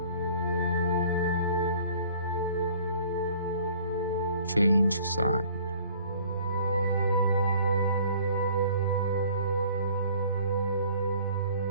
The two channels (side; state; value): both; inverted; correlation -0.53